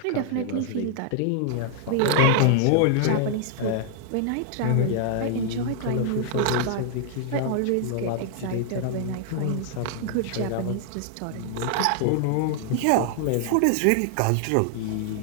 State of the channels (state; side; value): different; both; correlation -0.01